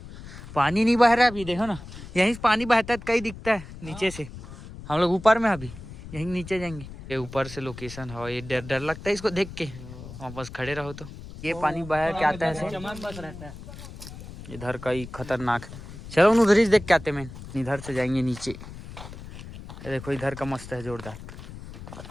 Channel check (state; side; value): noise; left; rumble, 14 dB below the sound